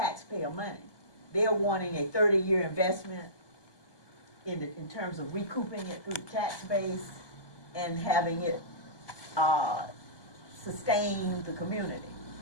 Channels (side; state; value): right; late; 1.2 ms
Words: money, they're wanting a 30-year investment in terms of recouping it through the tax base and having it sustain the community.